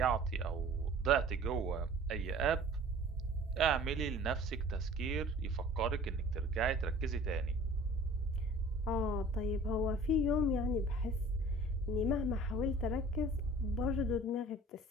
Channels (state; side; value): normal; both; correlation 0.47